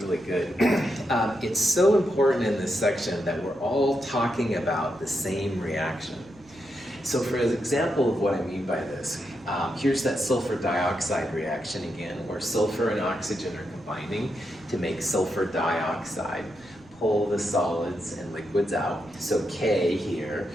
good, it's so important in this section that we're all talking about the same reaction. So for an example of what I mean by this, here's that sulfur dioxide reaction again, where sulfur and oxygen are combining to make sulfur dioxide. Pull the solids and liquids out. So K here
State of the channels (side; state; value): right; noise; rumble, 26 dB below the sound